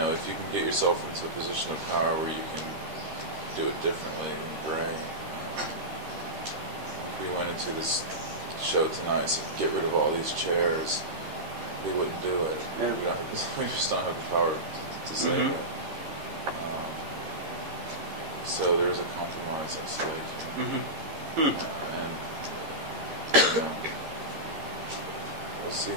if you can get yourself into a position of power where you can do it differently, then great. If we went into this show tonight, so get rid of all these chairs, they wouldn't do it. We just don't have the power to say that. So there's a compromise at stake. And we'll see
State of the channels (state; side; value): late; left; 13 ms